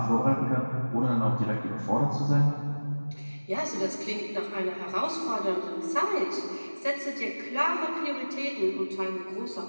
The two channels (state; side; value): inverted; both; correlation -1.00